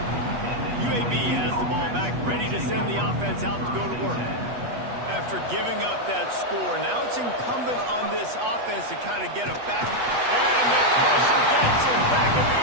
UAB has the ball back, ready to send the offense out to go to work. After giving up that score, now it's incumbent on this offense to kind of get it back. And the pressure gets him back at the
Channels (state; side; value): late; left; 8.2 ms